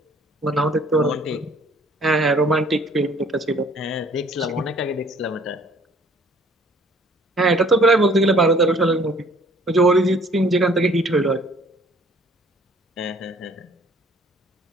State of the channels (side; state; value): both; normal; correlation 0.57